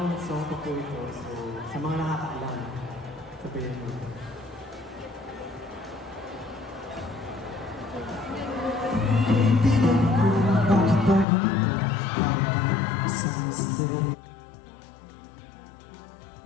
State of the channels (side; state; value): right; drops out; at 11.2 s